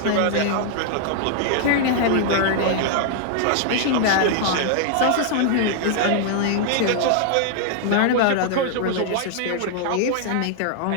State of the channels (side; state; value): both; different; correlation -0.01